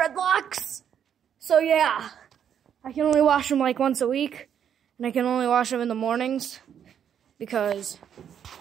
So yeah, I can only wash them like once a week. And I can only wash them in the mornings. Because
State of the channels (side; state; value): left; quieter; 8.7 dB